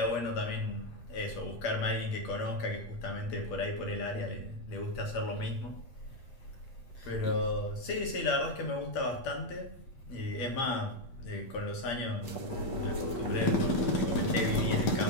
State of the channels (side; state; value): right; late; 8.5 ms